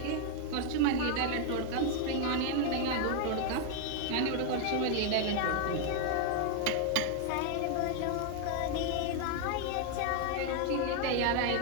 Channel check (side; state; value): both; different; correlation 0.00